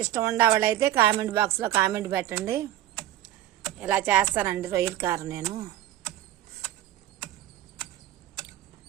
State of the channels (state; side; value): quieter; left; 13.0 dB